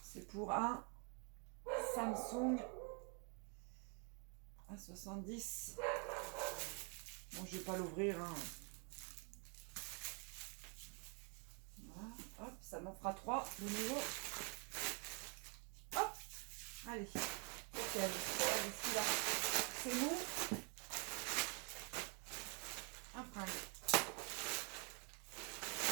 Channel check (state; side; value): quieter; left; 37.1 dB